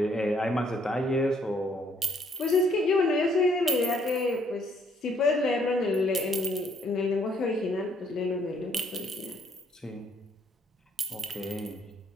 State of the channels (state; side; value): normal; both; correlation 0.67